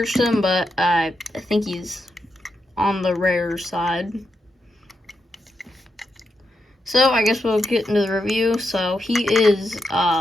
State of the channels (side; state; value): both; normal; correlation 0.85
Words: him, but I think he's on the rare side. So I guess we'll get into the review. So he is